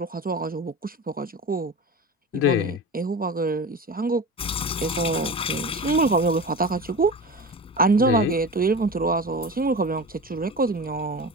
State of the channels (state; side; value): normal; both; correlation 0.30